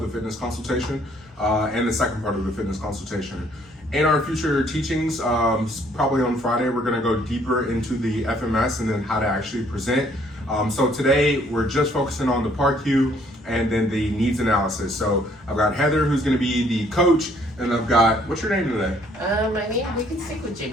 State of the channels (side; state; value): both; normal; correlation 0.63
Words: the fitness consultation and the second part of the fitness consultation. In our future teachings, probably on Friday, we're going to go deeper into the FMS and then how to actually present. So today, we're just focusing on the part Q and then the needs analysis. So I've got Heather, who's going to be the coach, and I've got, what's your name today? My name, we can stick with